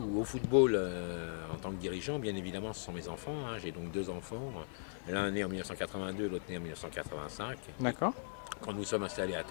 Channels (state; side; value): silent; right; 52 dB below the other